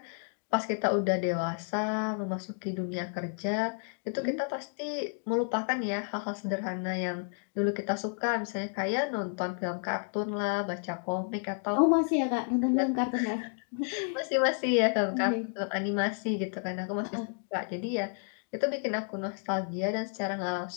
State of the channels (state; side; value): silent; right; 57 dB below the other